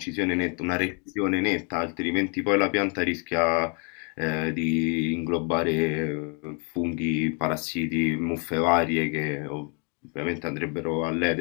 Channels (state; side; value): quieter; right; 36.2 dB